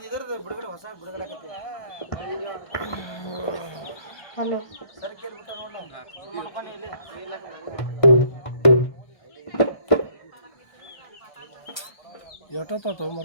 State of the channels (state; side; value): late; right; 1.3 ms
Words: ಇದರದ್ದು ಬಿಡುಗಡೆ ಹೊಸ ಬಿಡುಗಡೆ ಆಗತ್ತೆ ಹಲೋ ಸರಿ ಕೇಳ್ಬಿಟ್ಟ ನೋಡ ಸುಮ್ಮನೆ ಇಲ್ಲಿ ಎಷ್ಟೊತ್ತ